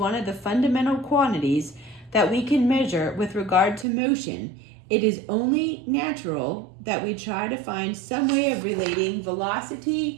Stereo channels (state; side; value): drops out; left; at 3.9 s